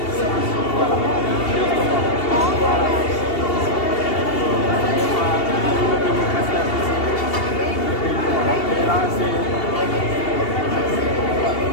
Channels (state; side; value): late; right; 2.8 ms